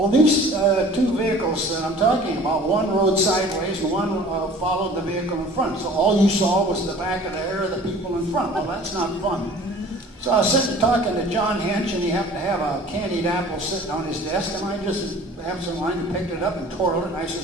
these 2 vehicles that I'm talking about, one rode sideways and one followed the vehicle in front. So all you saw was the back of the hair of the people in front. Well, that's not fun. So I was sitting talking to John Hench, and he happened to have a candied apple sitting on his desk, and I just absentmindedly picked it up and twirled it, and I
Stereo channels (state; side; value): normal; both; correlation 0.47